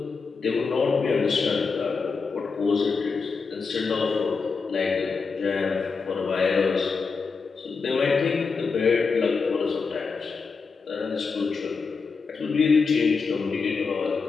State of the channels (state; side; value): quieter; right; 4.9 dB